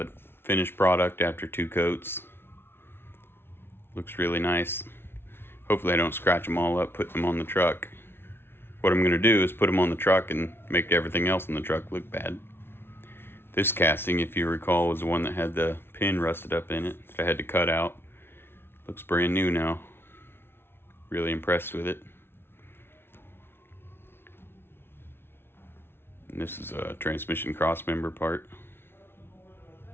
finished product after 2 coats. Looks really nice. Hopefully I don't scratch them all up putting them on the truck. What I'm going to do is put them on the truck and make everything else in the truck look bad. This casting, if you recall, was the one that had the pin rusted up in it that I had to cut out. Looks brand new now. Really impressed with it. And this is a transmission crossmember part.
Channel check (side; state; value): right; late; 0.11 ms